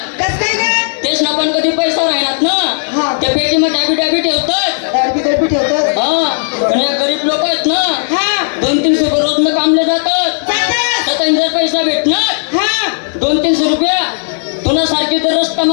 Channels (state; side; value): silent; right; digital silence